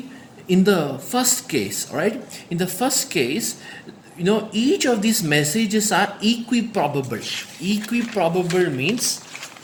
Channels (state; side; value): identical; both; correlation 1.00